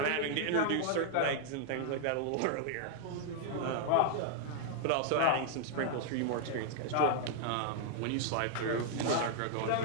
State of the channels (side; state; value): both; different; correlation -0.01